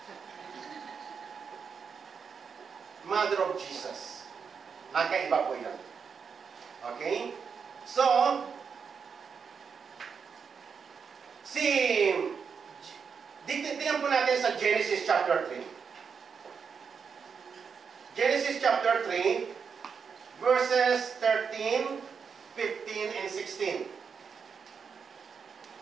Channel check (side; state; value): left; quieter; 6.2 dB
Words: Mother of Jesus. Magkaiba po yan. Okay? So, tingnan po natin sa Genesis chapter 3. Genesis chapter 3, verses 13, 15, and 16.